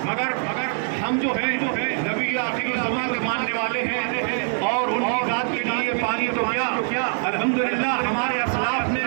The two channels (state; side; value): silent; left; 58 dB below the other